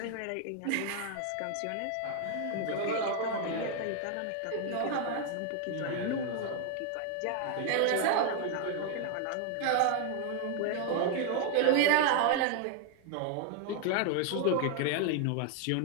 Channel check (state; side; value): different; both; correlation 0.00